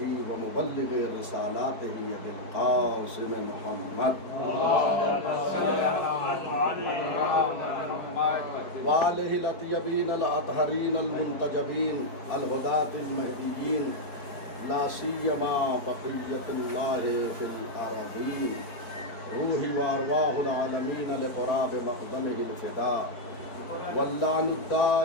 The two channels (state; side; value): late; right; 4.6 ms